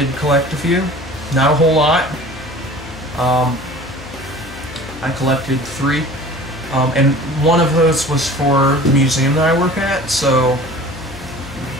collect a few. Not a whole lot. I collected 3. And one of those was for the museum that I work at, so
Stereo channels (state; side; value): noise; left; hum, 16 dB below the sound